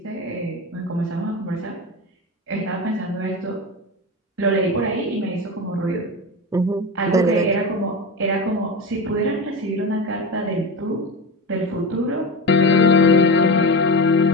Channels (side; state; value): both; normal; correlation 0.23